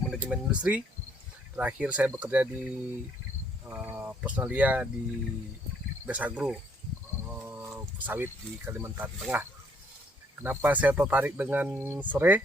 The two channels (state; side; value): normal; both; correlation 0.67